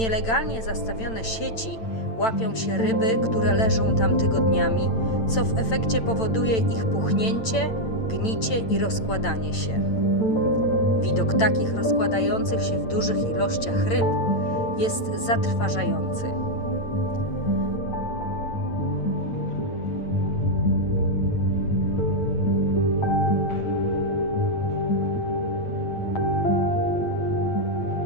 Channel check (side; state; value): right; late; 8.9 ms